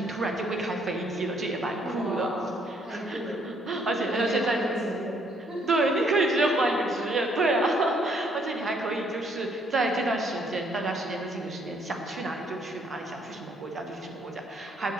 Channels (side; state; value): both; normal; correlation 0.67